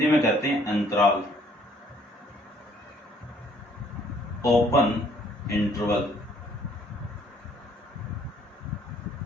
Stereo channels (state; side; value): normal; both; correlation 0.62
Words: में कहते हैं अंतराल। ओपन इंटरवल,